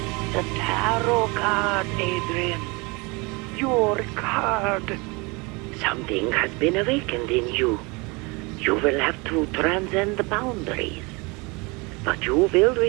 tarot card, Adrian. Your card. Something has been awakened in you. You will have to transcend the boundaries. But you will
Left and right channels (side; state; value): left; quieter; 27.4 dB